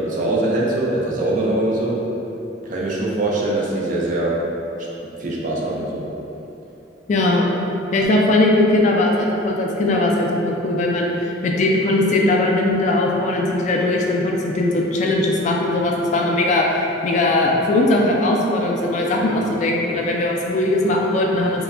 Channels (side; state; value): both; normal; correlation 0.37